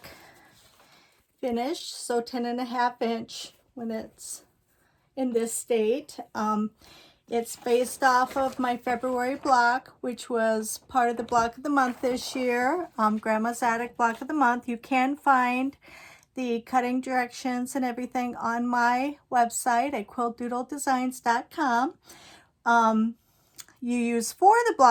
finished, so 10.5 inch when it's in this state. It's based off of my February block, which was part of the block of the month this year, Grandma's Attic block of the month. You can find the cutting directions and everything on my website at quiltdoodledesigns.com. You use 4 of the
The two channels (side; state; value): both; identical; correlation 1.00